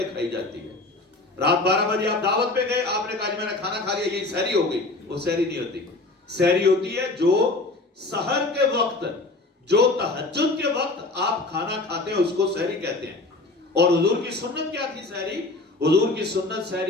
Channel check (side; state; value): right; quieter; 3.1 dB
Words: کھائی جاتی ہے. رات 12 بجے آپ دعوت پہ گئے, آپ نے کہا جی میں نے کھانا کھا لیا, یہی سحری ہو گئی. وہ سحری نہیں ہوتی. سحری ہوتی ہے جو سحر کے وقت, جو تہجد کے وقت آپ کھانا کھاتے ہیں اس کو سحری کہتے ہیں. اور حضور کی سنت کیا تھی سحری؟ حضور کی سنت